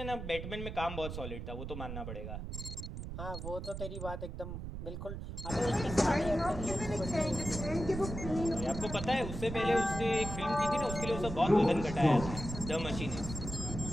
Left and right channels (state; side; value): noise; right; rumble, 7 dB below the sound